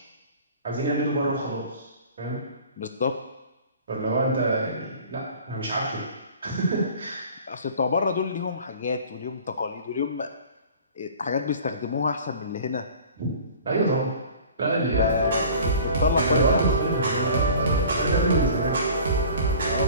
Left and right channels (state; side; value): inverted; both; correlation -0.45